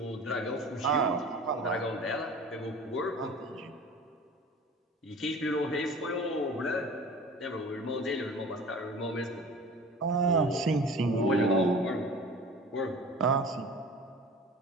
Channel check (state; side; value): normal; both; correlation 0.41